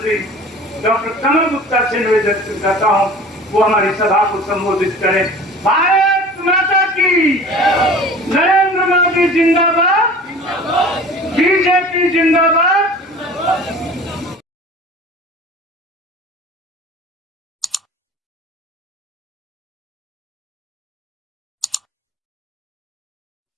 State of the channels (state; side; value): normal; both; correlation 0.42